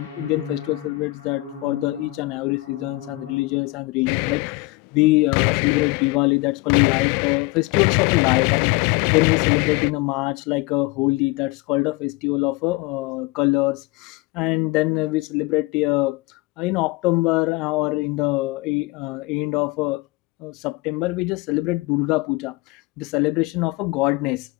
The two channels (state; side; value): quieter; right; 21.9 dB